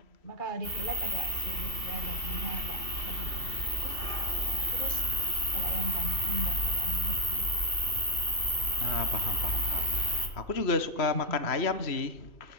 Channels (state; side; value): late; right; 2.7 ms